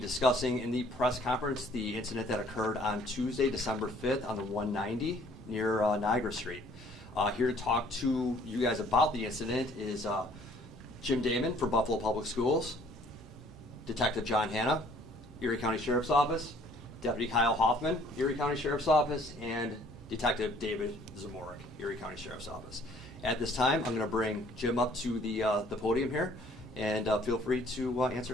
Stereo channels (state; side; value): normal; both; correlation 0.59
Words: in the press conference the incident that occurred on Tuesday, December 5th on the 190 near Niagara Street. Here to talk to you guys about the incident is Jim Damon for Buffalo Public Schools, Detective John Hanna, Erie County Sheriff's Office, Deputy Kyle Hoffman, Erie County Sheriff's Office, and Detective David Zamorik, Erie County Sheriff's Office. At this time, I'm going to bring Jim up to the podium here, and feel free to answer